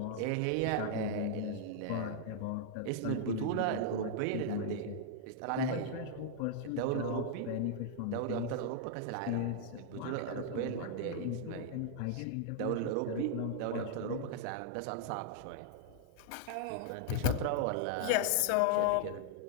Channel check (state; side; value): different; both; correlation -0.01